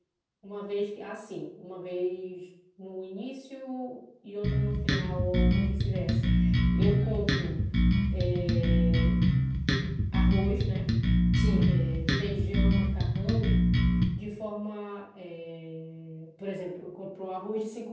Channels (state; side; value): identical; both; correlation 1.00